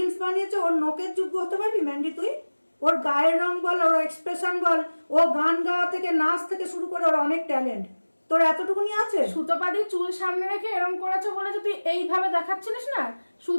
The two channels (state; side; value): inverted; both; correlation -1.00